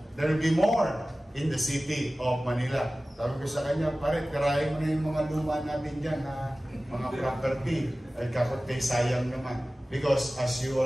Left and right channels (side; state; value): both; normal; correlation 0.97